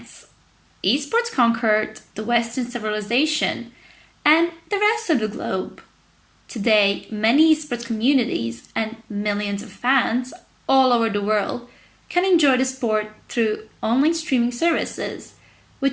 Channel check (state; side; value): identical; both; correlation 1.00